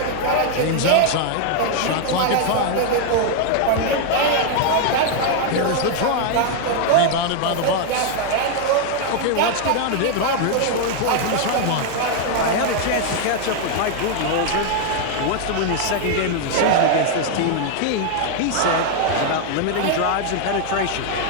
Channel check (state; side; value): different; both; correlation 0.00